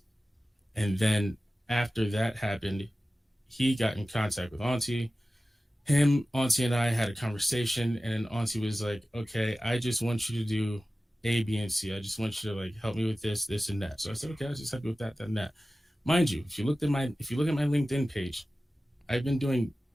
And then after that happened, he got in contact with Aunty. Aunty and I had a conversation, and then Aunty was like, okay, I just want you to do A, B, and C. I just want you to help me with this, this, and that. So I said, okay, I'll just help you with that, and that. Mind you, if you look at my LinkedIn page, I've been doing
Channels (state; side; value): normal; both; correlation 0.96